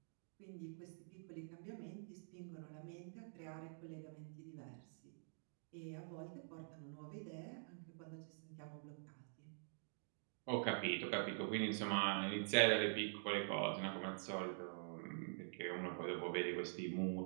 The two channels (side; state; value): left; silent; digital silence